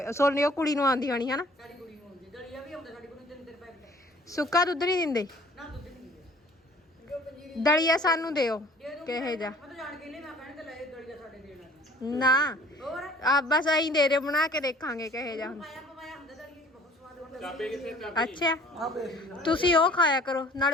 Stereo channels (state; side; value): normal; both; correlation 0.52